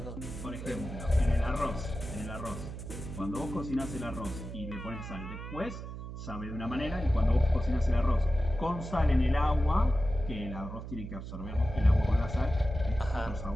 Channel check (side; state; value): right; noise; hum, 9 dB below the sound